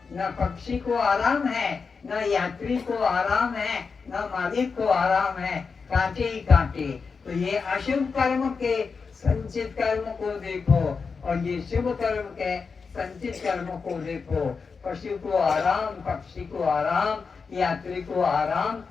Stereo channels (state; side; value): quieter; right; 5.1 dB